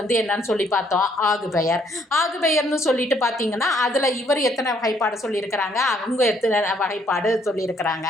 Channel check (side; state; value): both; normal; correlation 0.67